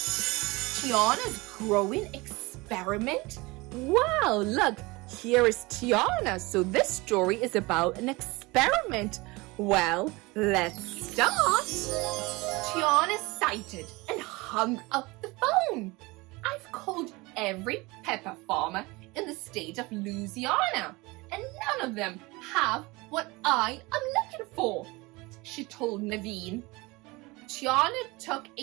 Tiana's growing experiment. Wow, look, here is Tiana. So this story is about an experiment. Well, let's start. Tiana sighted and hung up the phone. I've called every pepper farmer in the state of Louisiana, and none of them have what I am looking for, she told Naveen. Tiana took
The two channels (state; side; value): quieter; left; 23.5 dB